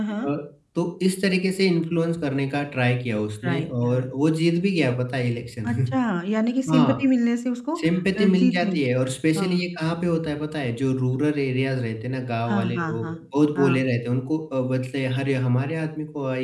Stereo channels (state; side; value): identical; both; correlation 1.00